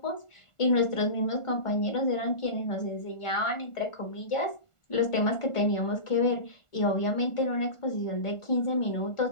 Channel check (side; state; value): right; late; 1.4 ms